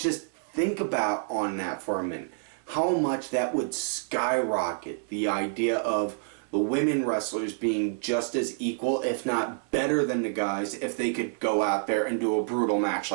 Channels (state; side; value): silent; left; 59 dB below the other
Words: think about on that for a minute. How much that would skyrocket the idea of the women wrestlers being just as equal, if not better than the guys, if they could go out there and do a brutal match